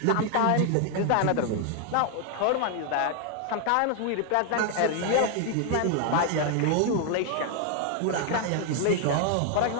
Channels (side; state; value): both; different; correlation 0.00